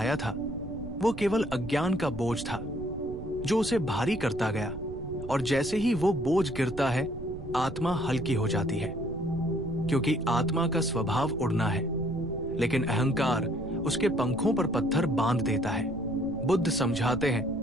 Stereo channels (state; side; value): noise; right; rumble, 11 dB below the sound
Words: था वो केवल अज्ञान का बोझ था जो उसे भारी करता गया, और जैसे ही वो बोझ गिरता है आत्मा हल्की हो जाती है, क्योंकि आत्मा का स्वभाव उड़ना है, लेकिन अहंकार उसके पंखों पर पत्थर बांध देता है। बुद्ध समझाते हैं